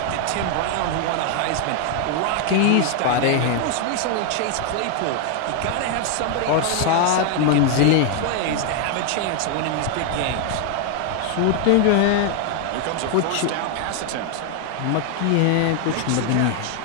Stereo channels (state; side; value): different; both; correlation 0.00